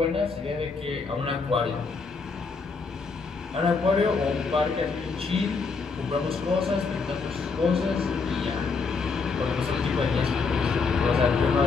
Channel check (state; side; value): quieter; right; 4.6 dB